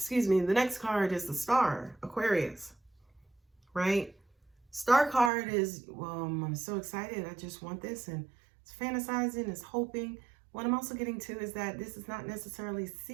me. The next card is the Star, Aquarius, right? Star card is, well, I'm so excited. I just want this, and it's fantasizing, it's hoping. What I'm also getting to is that this is not necessarily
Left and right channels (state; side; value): drops out; left; at 5.3 s